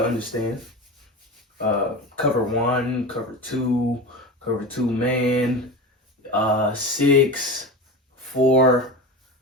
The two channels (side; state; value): both; normal; correlation 0.27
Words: understand. Cover one, cover two man, 6, 4,